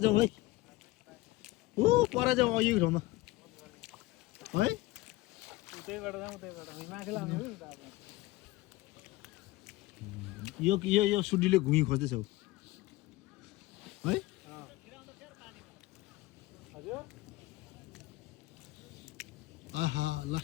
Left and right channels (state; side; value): quieter; right; 18.9 dB